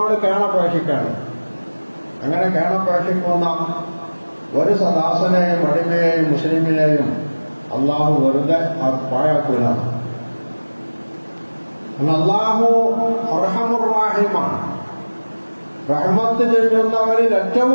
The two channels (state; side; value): inverted; both; correlation -1.00